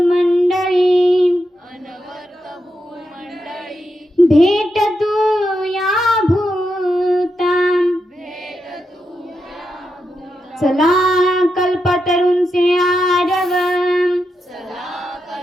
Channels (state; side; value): normal; both; correlation 0.85